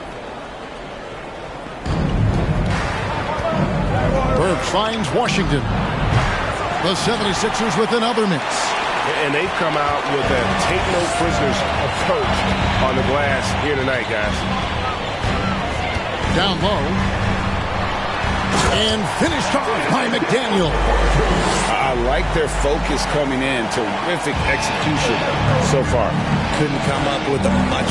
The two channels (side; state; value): both; identical; correlation 1.00